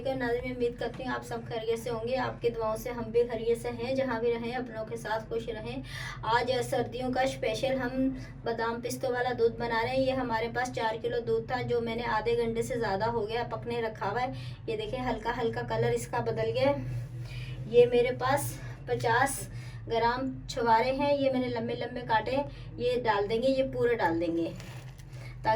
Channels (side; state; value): both; identical; correlation 1.00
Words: नाज़रीन, मैं उम्मीद करती हूँ आप सब खैरियत से होंगे। आपकी दुआओं से हम भी खैरियत से हैं। जहाँ भी रहें अपनों के साथ खुश रहें। आज सर्दियों का स्पेशल हम बादाम पिस्तों वाला दूध बना रहे हैं। ये हमारे पास 4 किलो दूध था जो मैंने आधे घंटे से ज़्यादा हो गया पकने रखा हुआ है। ये देखें हल्का हल्का कलर इसका बदल गया। ये मेरे पास 50 ग्राम छुहारे हैं, ये मैंने लंबे लंबे काटे हैं। ये डाल देंगे, ये पूरे डाल देंगे